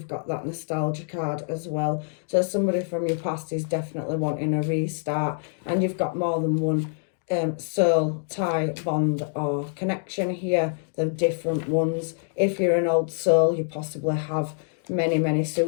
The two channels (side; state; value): right; silent; digital silence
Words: got that nostalgia card as well. So somebody from your past is definitely wanting a restart, and you've got more than one soul tie, bond or connection here. They're different ones. If you're an old soul, you possibly have many